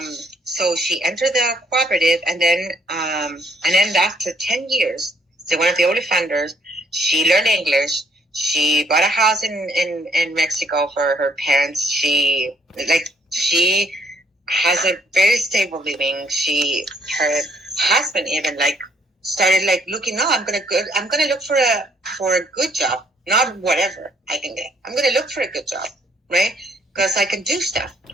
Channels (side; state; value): both; normal; correlation 0.66